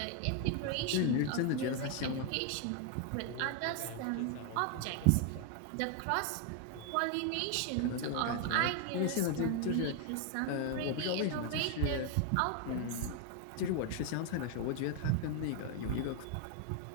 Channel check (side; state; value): both; different; correlation 0.01